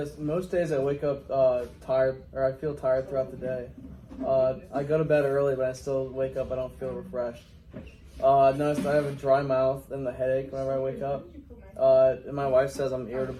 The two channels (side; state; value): both; identical; correlation 1.00